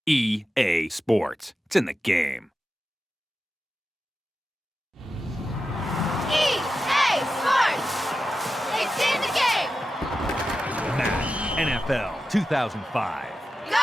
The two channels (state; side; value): normal; both; correlation 0.91